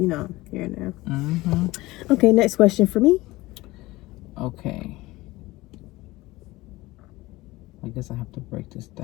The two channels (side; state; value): right; quieter; 19.6 dB